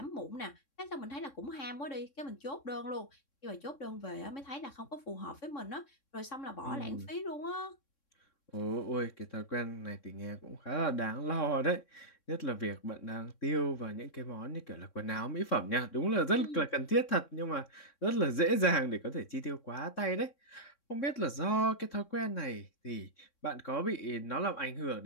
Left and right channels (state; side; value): late; right; 3.6 ms